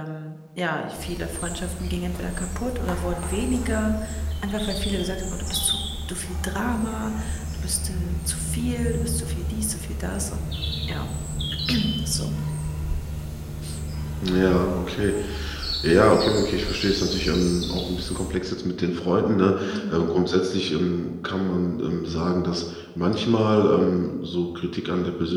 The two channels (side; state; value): both; identical; correlation 1.00